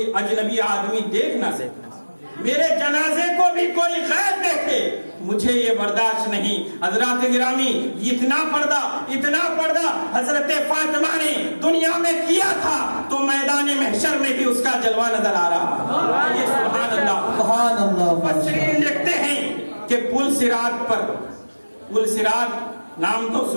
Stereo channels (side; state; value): both; inverted; correlation -1.00